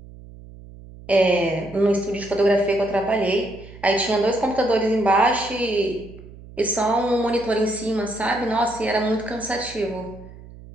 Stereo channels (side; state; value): right; noise; hum, 18 dB below the sound